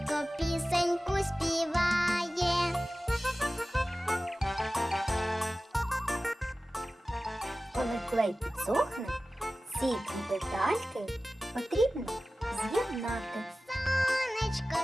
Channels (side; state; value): both; normal; correlation 0.96